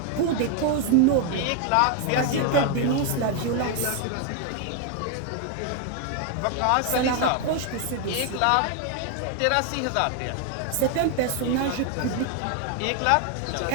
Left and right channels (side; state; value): both; different; correlation 0.01